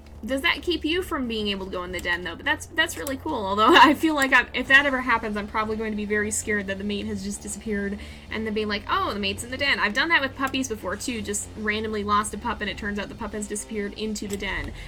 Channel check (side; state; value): both; identical; correlation 1.00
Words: Does that keep you from being able to go in the den, though? But that's really cool. Although I feel like if that ever happens, I'm probably going to be very scared that the mate has just disappeared and then being like, oh, the mate's in the den. I've done that with puppies before, too. Just randomly lost a pup, and it turns out the pup has disappeared into the den.